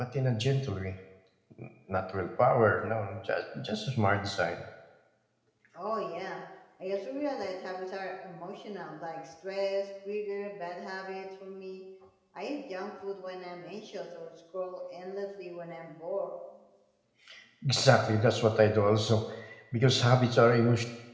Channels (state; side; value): identical; both; correlation 1.00